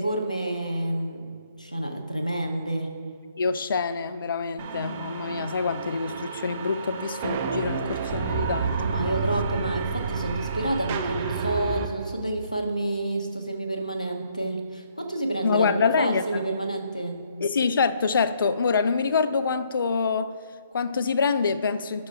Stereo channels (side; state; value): both; inverted; correlation -0.68